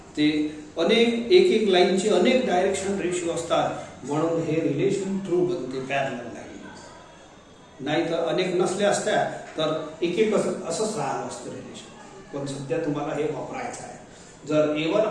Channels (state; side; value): identical; both; correlation 1.00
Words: ते अनेक एक लाईनचे अनेक डायरेक्शन रेशिओ असतात, म्हणून हे रिलेशन ट्रू बनते पॅरलल लाईन. नाही तर अनेक नसल्या असत्या तर एक असंच राहिलं असतं रिलेशन. पण सध्या तुम्हाला हे वापरायचं आहे. जर A1